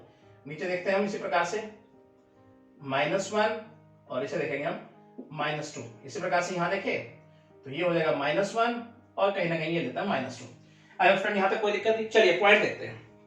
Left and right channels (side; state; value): both; identical; correlation 1.00